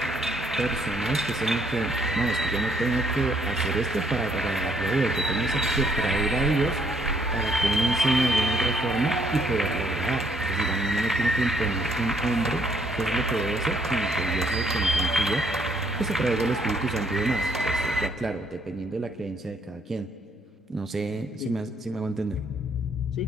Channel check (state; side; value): normal; both; correlation 0.68